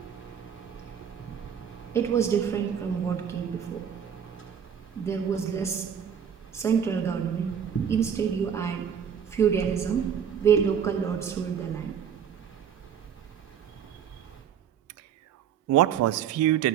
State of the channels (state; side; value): quieter; left; 8.1 dB